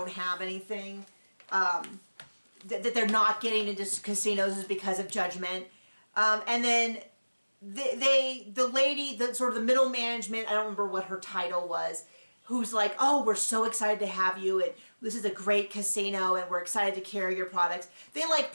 have anything. That they're not getting into casinos is because of judgment. And then the lady, the sort of the middle management, I don't remember what her title was, who's like, oh, we're so excited to have you, and this is a great casino, and we're excited to carry your products. They like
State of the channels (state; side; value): inverted; both; correlation -1.00